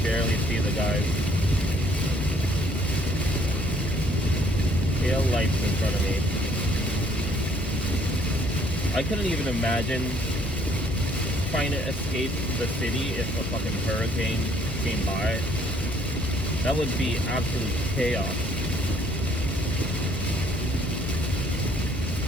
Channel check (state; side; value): normal; both; correlation 0.63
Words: barely see the guys. Tail lights in front of me. I couldn't even imagine trying to escape the city if a fucking hurricane came by. That would be absolute chaos.